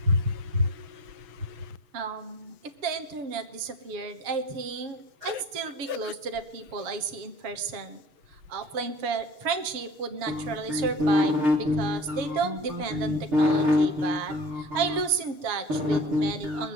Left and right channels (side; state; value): left; late; 7.3 ms